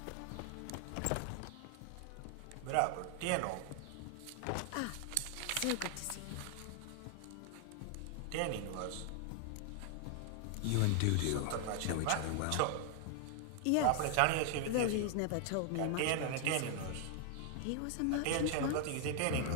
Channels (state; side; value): different; both; correlation 0.00